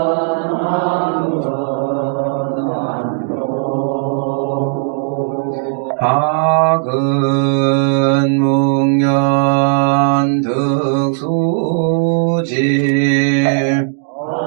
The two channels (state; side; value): silent; left; 69 dB below the other